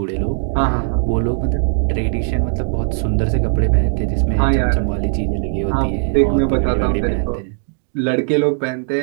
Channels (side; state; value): left; silent; digital silence